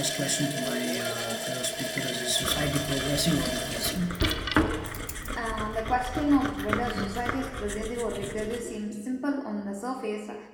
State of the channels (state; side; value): identical; both; correlation 1.00